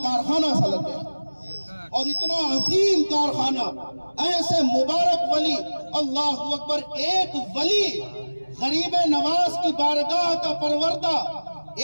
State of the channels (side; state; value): both; inverted; correlation -1.00